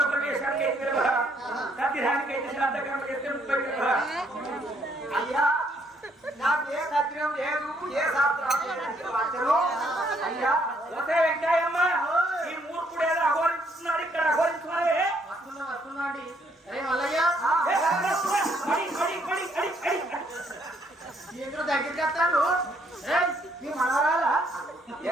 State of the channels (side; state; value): both; normal; correlation 0.69